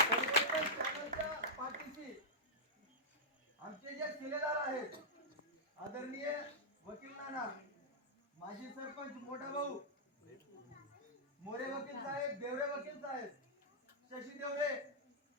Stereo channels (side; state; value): both; normal; correlation -0.08